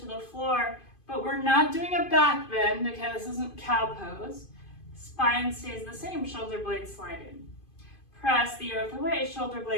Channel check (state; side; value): late; right; 2.5 ms